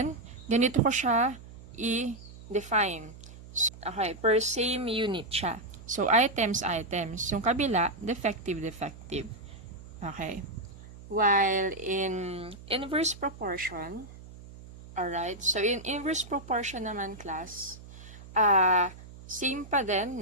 ganito ko siya i-define. Okay, per same unit siya. So, items. Yung kabila, defective. Okay. While in inverse proportion, alright, so in inverse proportion naman class, same pa din,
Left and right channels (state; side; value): noise; right; hum, 17 dB below the sound